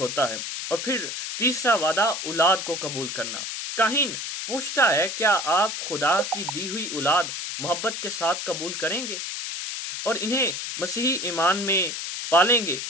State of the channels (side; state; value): left; noise; hiss, 5 dB below the sound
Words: है। और फिर तीसरा वादा, औलाद को कबूल करना। काहिन पूछता है, क्या आप खुदा की दी हुई औलाद मोहब्बत के साथ कबूल करेंगे और इन्हें मसीही ईमान में पालेंगे?